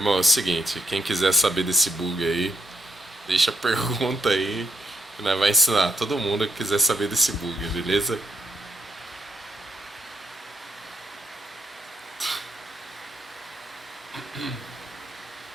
é o seguinte, quem quiser saber desse bug aí, deixa a pergunta aí que nós vai ensinar todo mundo que quiser saber desse bug, beleza?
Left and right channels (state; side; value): normal; both; correlation 0.77